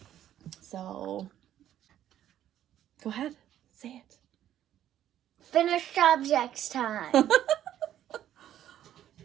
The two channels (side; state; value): left; quieter; 11.5 dB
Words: So, go ahead, say it. Finished objects time.